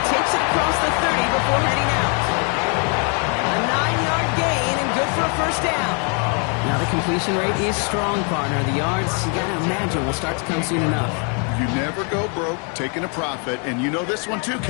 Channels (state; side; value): quieter; right; 38.4 dB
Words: takes it across the 30 before heading out. A 9-yard gain and good for a first down. Now the completion rate is strong, partner. The yards, you gotta imagine, will start to come soon enough. You never go broke taking a profit. And you know this one too,